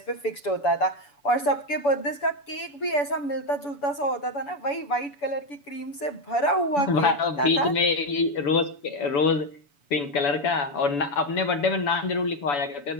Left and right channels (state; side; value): late; right; 7.0 ms